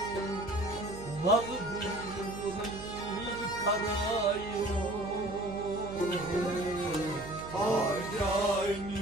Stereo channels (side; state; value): right; noise; hum, 13 dB below the sound